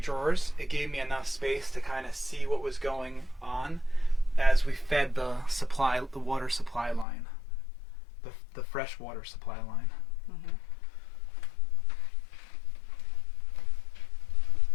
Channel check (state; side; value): drops out; right; at 7.1 s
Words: it gave me enough space to kind of see what was going on as we fed the water supply line, the fresh water supply line. Mm-hmm.